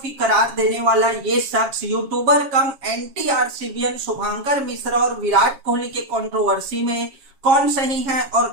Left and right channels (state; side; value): late; left; 7.3 ms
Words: करार देने वाला ये शख्स यूट्यूबर कम एंटी आरसीबीएन शुभंकर मिश्रा और विराट कोहली के कंट्रोवर्सी में कौन सही है और